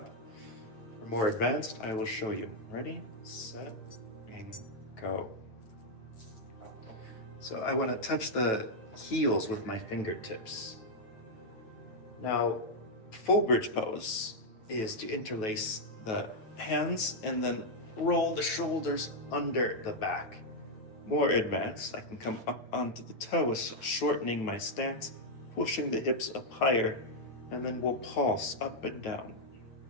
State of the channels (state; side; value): late; right; 9.1 ms